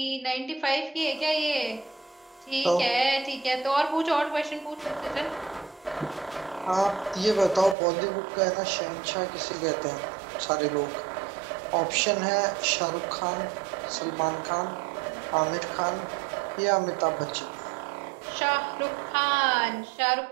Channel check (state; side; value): drops out; left; at 7.8 s